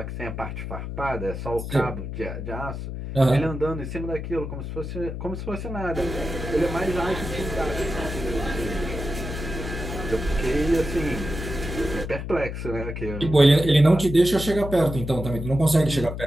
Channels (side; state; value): left; noise; hum, 6 dB below the sound